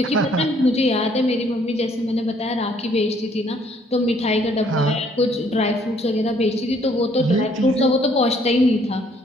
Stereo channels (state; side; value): normal; both; correlation 0.64